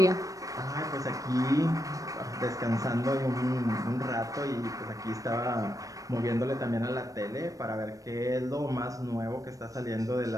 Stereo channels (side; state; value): left; late; 0.16 ms